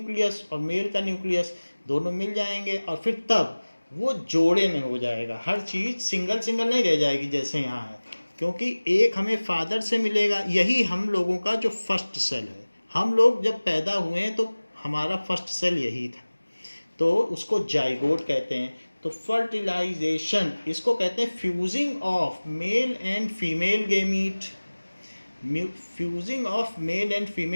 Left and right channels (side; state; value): both; inverted; correlation -1.00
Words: और मेल का न्यूक्लियस दोनों मिल जाएंगे, और फिर तब वो जोड़े में हो जाएगा, हर चीज़ सिंगल सिंगल नहीं रह जाएगी जैसे यहाँ है, क्योंकि एक हमें फादर से मिलेगा। यही हम लोगों का जो फर्स्ट सेल है, हम लोग जब पैदा हुए हैं तो हमारा फर्स्ट सेल यही था, तो उसको जाइगोट कहते हैं। तो फर्टिलाइजेशन इसको कहते हैं fusing of male and female gamete, fusing of male and